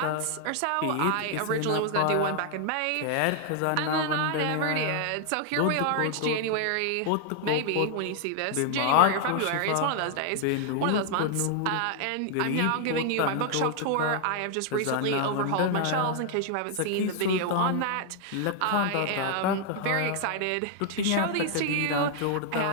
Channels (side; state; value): both; different; correlation 0.00